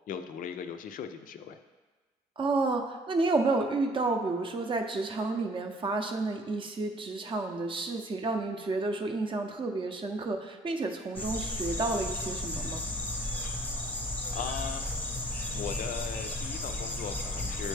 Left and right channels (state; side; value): normal; both; correlation 0.56